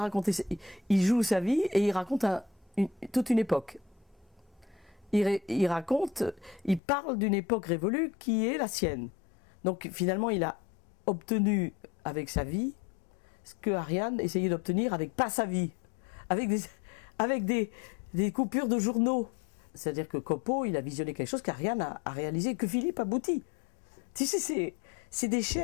joue sa vie et il raconte toute une époque. Il parle d'une époque révolue qui est la sienne. Donc finalement, il a obtenu avec sa vie ce que Ariane essayait d'obtenir avec pas sa vie, avec des coupures de journaux. C'est-à-dire que Copo, il a visionné quelque chose qu'Ariane a réalisé, que Philippe aboutit. Tu sais, c'est des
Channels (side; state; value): right; drops out; at 6.8 s